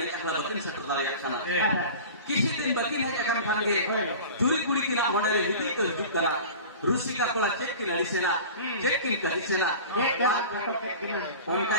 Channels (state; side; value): inverted; both; correlation -0.37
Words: एकला दतिन सेटर दारिया खाना किसी दिन बकी नहीं एकन खानगे चुरी कुड़ी किना होनेले हिदी तो हिदी करा रुसी का कोला चेक किना लिसेना चेक किन करिसेना उनका